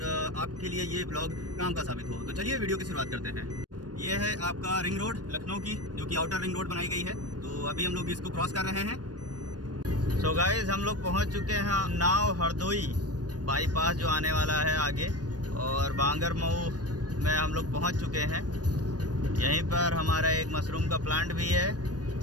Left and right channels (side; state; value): left; late; 0.69 ms